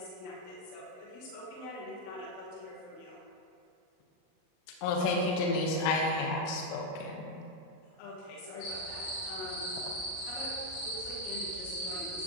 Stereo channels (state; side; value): late; right; 39 ms